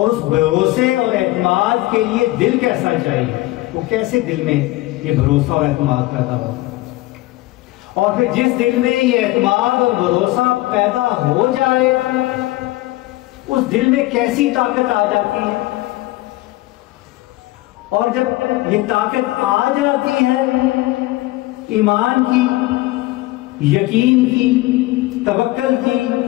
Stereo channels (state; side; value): quieter; right; 18.7 dB